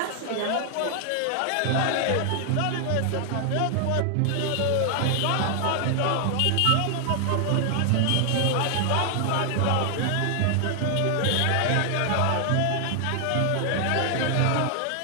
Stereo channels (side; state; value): both; different; correlation 0.00